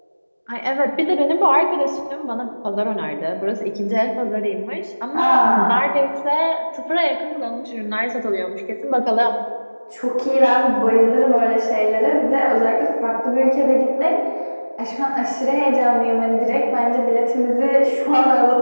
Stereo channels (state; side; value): inverted; both; correlation -1.00